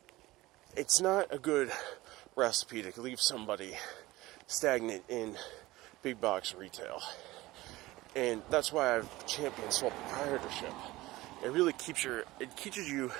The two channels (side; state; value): left; quieter; 18.8 dB